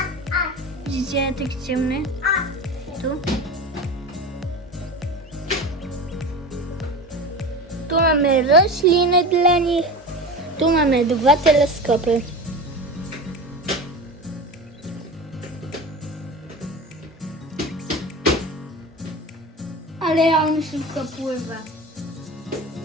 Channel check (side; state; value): both; normal; correlation 0.30